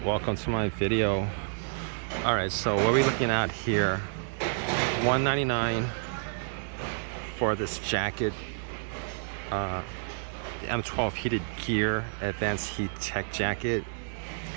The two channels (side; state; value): left; silent; digital silence